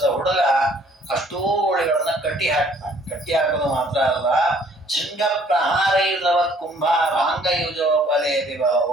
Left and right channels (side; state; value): both; normal; correlation 0.59